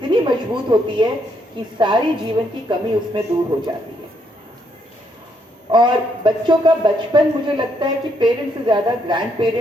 मजबूत होती है कि सारी जीवन की कमी उसमें दूर हो जाती है। और बच्चों का बचपन मुझे लगता है कि पेरेंट्स से ज्यादा ग्रैंड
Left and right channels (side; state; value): both; normal; correlation 0.74